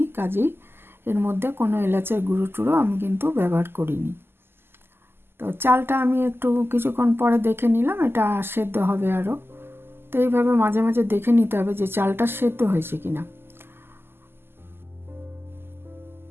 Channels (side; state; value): left; late; 0.11 ms